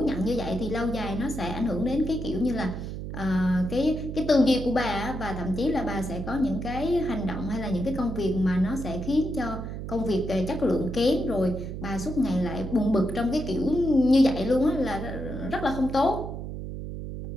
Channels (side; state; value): right; noise; hum, 7 dB below the sound